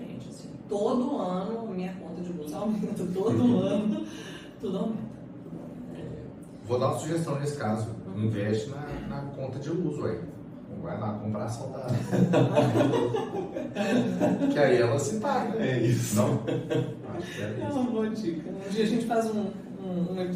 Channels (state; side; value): identical; both; correlation 1.00